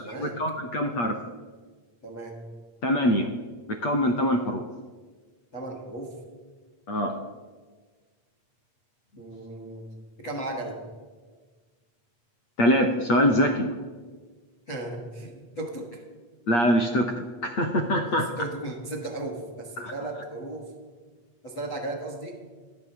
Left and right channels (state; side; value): late; right; 8.5 ms